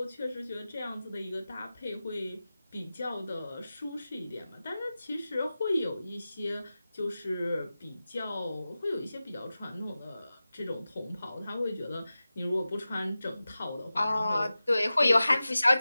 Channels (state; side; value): inverted; both; correlation -0.95